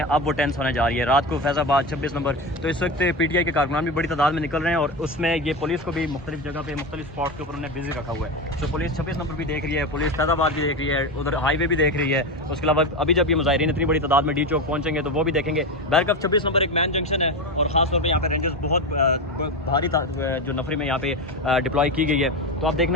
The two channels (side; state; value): both; normal; correlation 0.18